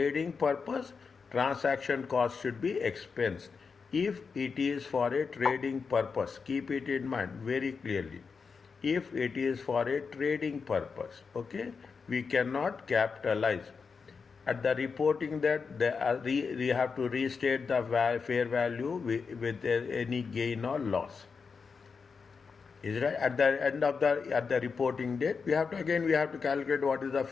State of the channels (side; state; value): right; quieter; 5.3 dB